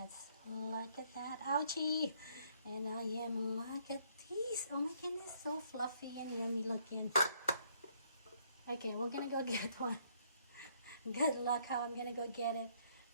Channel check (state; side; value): inverted; both; correlation -0.68